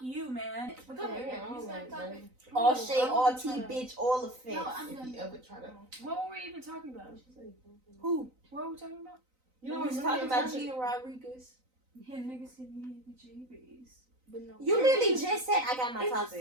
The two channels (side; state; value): left; late; 3.9 ms